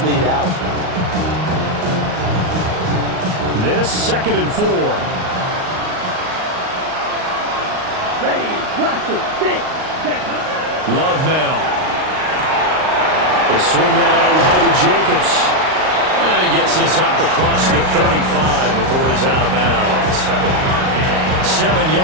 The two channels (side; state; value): left; late; 38 ms